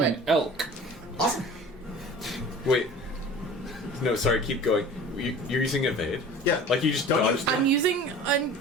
an elk. Awesome. Wait. No, sorry, keep going. You're using evade? Yeah. Like you just dodged I'm using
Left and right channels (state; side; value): normal; both; correlation 0.42